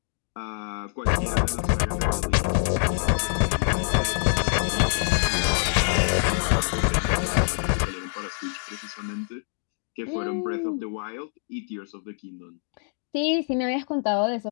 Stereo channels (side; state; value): right; silent; 59 dB below the other